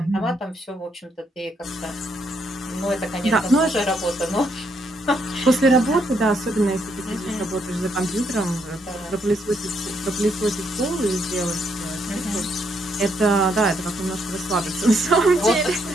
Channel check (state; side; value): normal; both; correlation 0.74